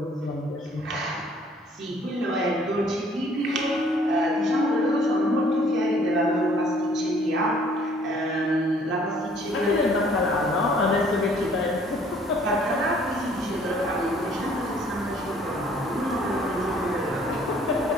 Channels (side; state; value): both; normal; correlation 0.59